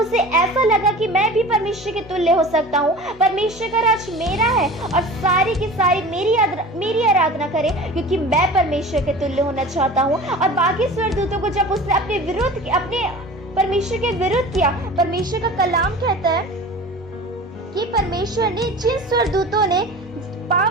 ऐसा लगा कि मैं भी परमेश्वर के तुल्य हो सकता हूँ, परमेश्वर का राज मेरा है और सारी की सारी मेरी आराधना करे, क्योंकि मैं परमेश्वर के तुल्य होना चाहता हूँ। और बाकी स्वर्गदूतों को जब उसने अपने परमेश्वर के विरुद्ध किया, परमेश्वर का कलाम कहता है कि परमेश्वर ने जिन स्वर्गदूतों ने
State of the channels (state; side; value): normal; both; correlation 0.38